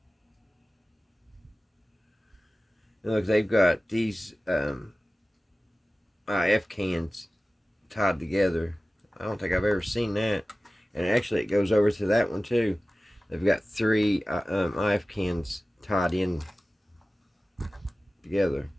Look, they've got these IF cans tied together. I don't think I've ever seen that. And actually it goes over to that one too. They've got three IF cans tied in together.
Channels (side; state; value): both; normal; correlation 0.96